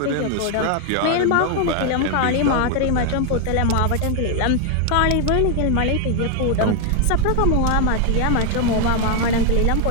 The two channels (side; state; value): both; different; correlation 0.00